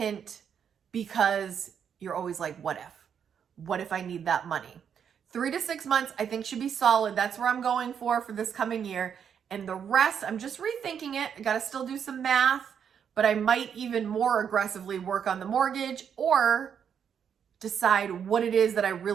because you're always like, what if? What if I need that money? 3 to 6 months, I think should be solid. That's where I'm going for this coming year. And the rest, I'm just rethinking it. I got to still do some math, but I might even more aggressively work on the mortgage or decide what it is that I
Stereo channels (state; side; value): quieter; left; 7.8 dB